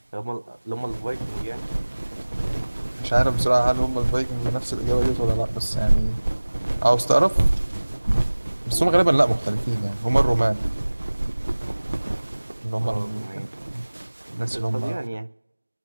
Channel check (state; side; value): inverted; both; correlation -1.00